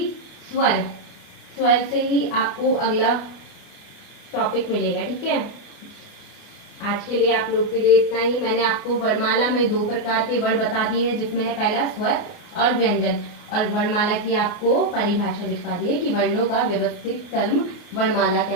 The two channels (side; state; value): right; late; 29 ms